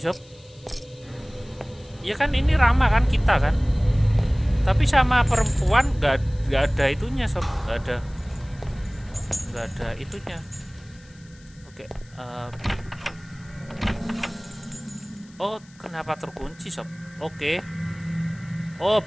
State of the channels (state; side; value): noise; left; hiss, 27 dB below the sound